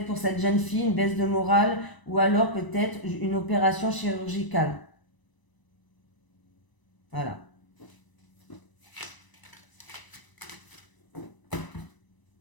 pour cette jeune fille, une baisse de morale, ou alors peut-être une opération chirurgicale. Voilà.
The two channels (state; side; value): late; right; 1.0 ms